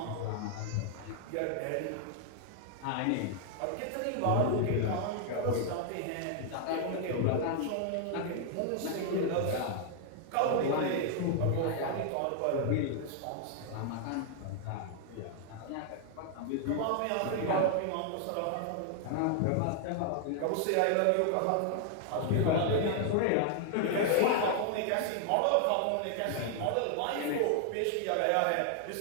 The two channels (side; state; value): both; different; correlation 0.00